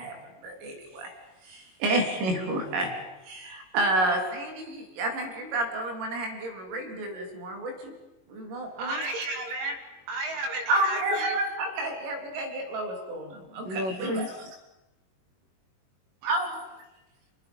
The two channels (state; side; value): late; left; 21 ms